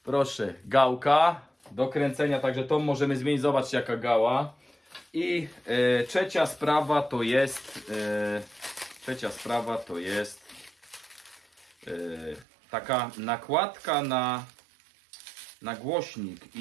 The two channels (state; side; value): drops out; left; at 12.5 s